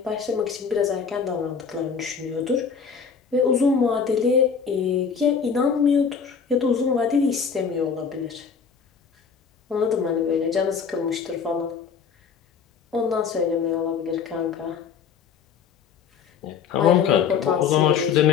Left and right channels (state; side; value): quieter; right; 6.3 dB